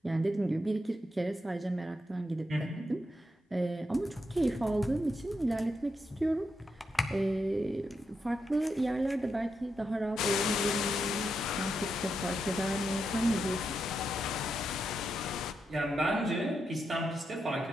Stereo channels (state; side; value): normal; both; correlation 0.84